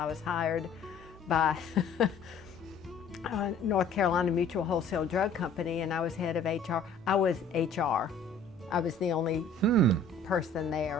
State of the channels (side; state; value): right; quieter; 3.8 dB